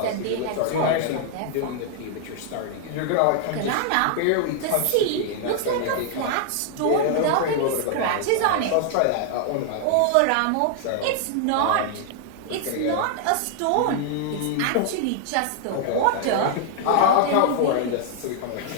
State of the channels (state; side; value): different; both; correlation 0.00